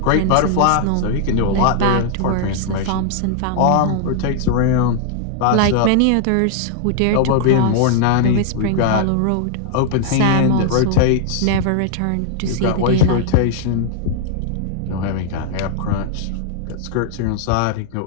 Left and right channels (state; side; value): different; both; correlation 0.00